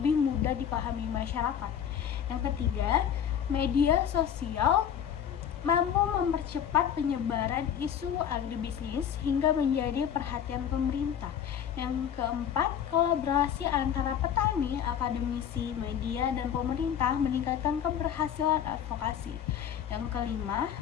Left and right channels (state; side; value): quieter; right; 9.0 dB